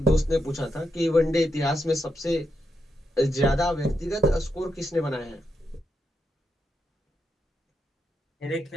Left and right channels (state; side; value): normal; both; correlation 0.83